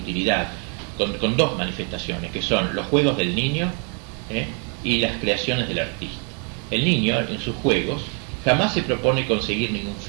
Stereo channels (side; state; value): left; quieter; 35.0 dB